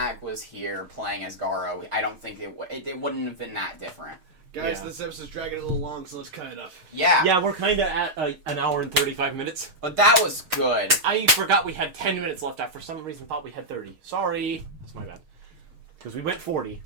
was here playing as Garo, I don't think it wouldn't have been that different. Guys, Yeah. this episode's dragging a little long, so let's cut it up. Yeah. Yeah, we're kind of at an hour and 35 minutes. But that was good. I forgot we had 10 minutes left. I, for some reason, thought we had 30. Sorry. That's my bad. Because we went 40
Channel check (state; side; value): late; left; 6.5 ms